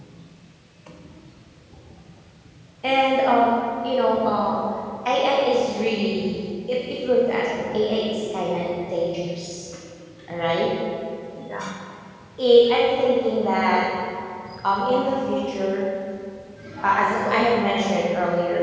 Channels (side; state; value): both; identical; correlation 1.00